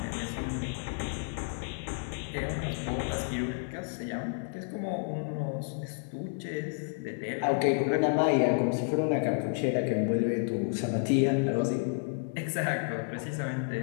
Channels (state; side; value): silent; right; digital silence